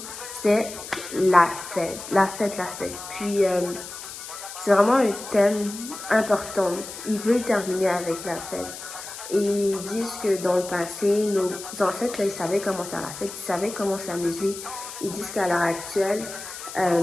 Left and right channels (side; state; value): left; noise; hiss, 11 dB below the sound